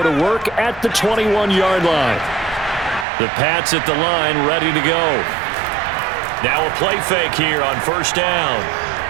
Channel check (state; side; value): drops out; left; at 3.1 s